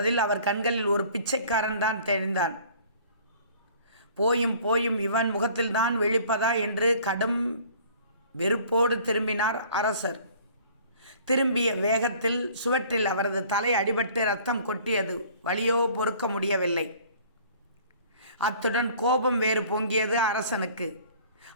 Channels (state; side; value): inverted; both; correlation -0.52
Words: அவர் கண்களில் ஒரு பிச்சைக்காரன் தான் தெரிந்தான். போயும் போயும் இவன் முகத்தில்தான் விழிப்பதா என்று கடும் வெறுப்போடு திரும்பினார் அரசர். திரும்பிய வேகத்தில் சுவற்றில் அவரது தலை அடிபட்டு ரத்தம் கொட்டியது. வலியோ பொறுக்க முடியவில்லை. அத்துடன் கோபம் வேறு பொங்கியது அரசனுக்கு.